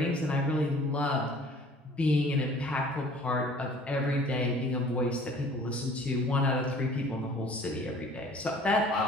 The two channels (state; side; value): normal; both; correlation 0.51